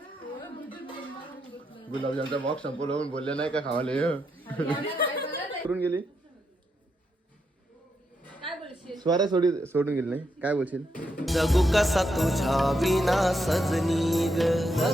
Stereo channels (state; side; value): normal; both; correlation 0.81